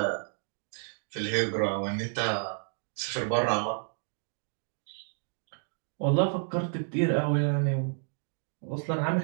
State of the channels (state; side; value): silent; left; 56 dB below the other